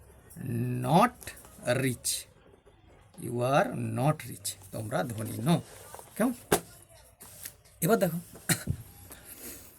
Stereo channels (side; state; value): both; identical; correlation 1.00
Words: not rich, you are not rich, তোমরা ধনী নও। কেমন? এবার দেখো,